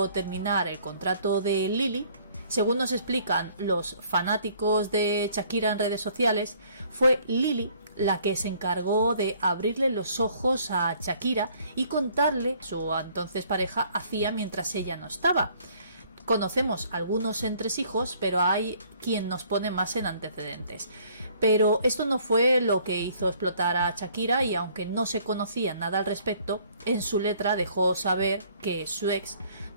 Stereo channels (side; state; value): both; inverted; correlation -0.60